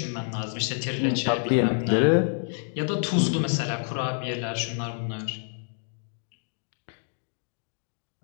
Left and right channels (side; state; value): right; silent; digital silence